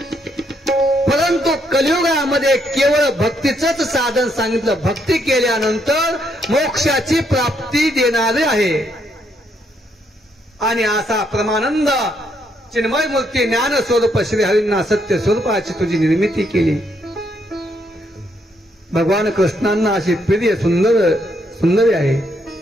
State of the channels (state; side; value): normal; both; correlation 0.74